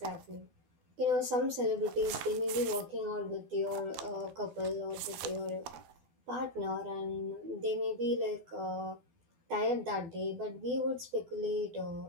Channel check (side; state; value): left; late; 12 ms